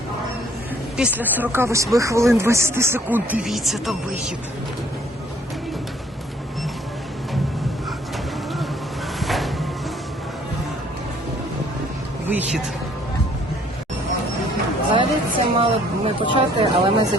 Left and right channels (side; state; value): both; normal; correlation 0.60